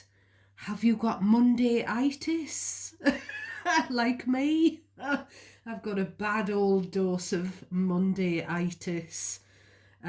Have you got Monday-itis? Like me? I've got a bad old dose of Monday-itis.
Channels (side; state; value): both; identical; correlation 1.00